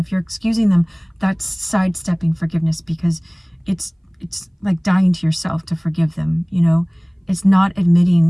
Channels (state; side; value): identical; both; correlation 1.00